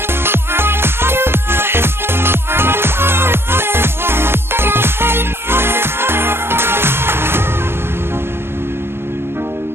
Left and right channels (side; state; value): left; late; 0.11 ms